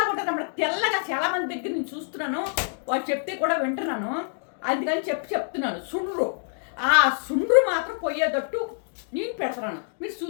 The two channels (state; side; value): silent; right; digital silence